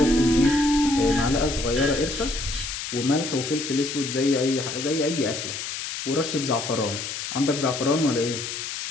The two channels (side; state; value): left; noise; hiss, 6 dB below the sound